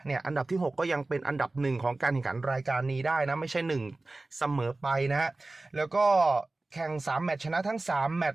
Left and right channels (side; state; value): left; quieter; 3.1 dB